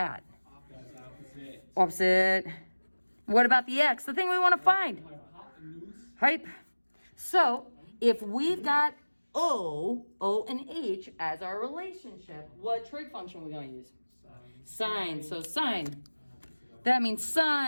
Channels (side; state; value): both; inverted; correlation -1.00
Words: That's opposite. Opposite. What about the x? The thing we want to find. Hypotenuse. Hype. So if we've got O, and H as our relationship, what trig function are we going to use? Sine. So sine. That means